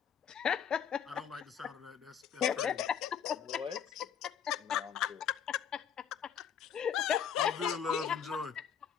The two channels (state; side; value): quieter; right; 8.0 dB